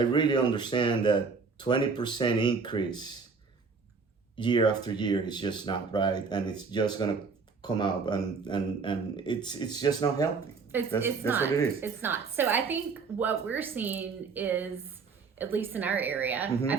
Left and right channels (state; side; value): quieter; left; 4.9 dB